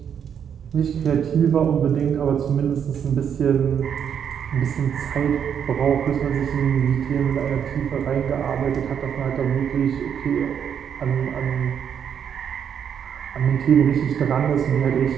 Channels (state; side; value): quieter; left; 8.1 dB